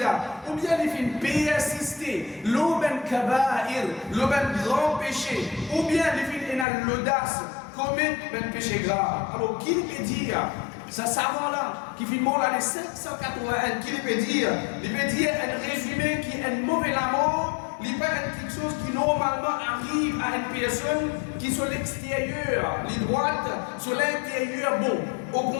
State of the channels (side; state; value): right; drops out; at 6.7 s